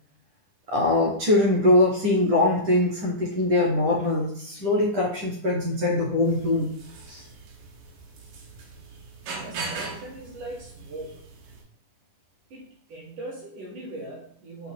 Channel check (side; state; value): left; late; 10 ms